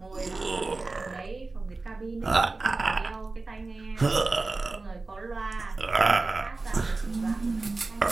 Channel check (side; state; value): left; quieter; 3.5 dB